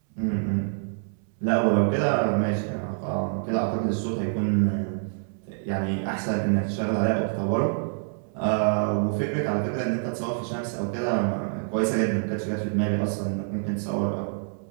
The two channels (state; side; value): silent; left; 61 dB below the other